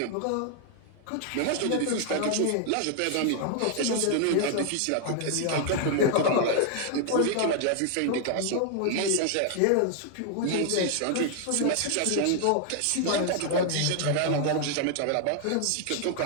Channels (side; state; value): both; different; correlation 0.00